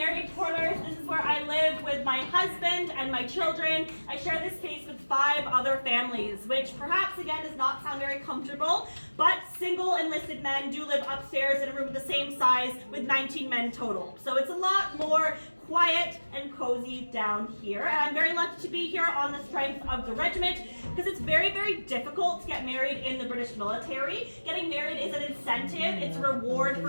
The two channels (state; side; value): inverted; both; correlation -1.00